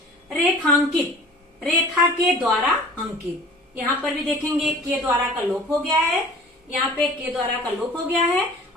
रेखांकित, रेखा के द्वारा अंकित। यहाँ पर भी देखेंगे के द्वारा का लोप हो गया है, यहाँ पे के द्वारा का लोप हो गया है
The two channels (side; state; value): both; normal; correlation 0.46